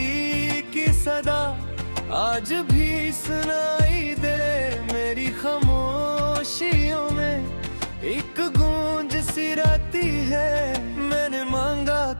की सदा आज भी सुनाई दे, मेरी खामोशियों में एक गूंज सी रहती है। मैंने मांगा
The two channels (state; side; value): inverted; both; correlation -1.00